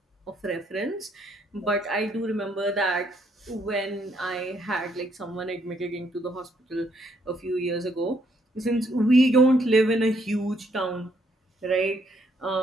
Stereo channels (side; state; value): both; normal; correlation 0.71